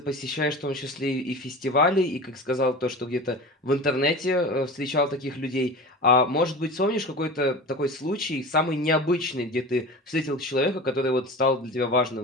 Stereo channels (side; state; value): both; normal; correlation 0.33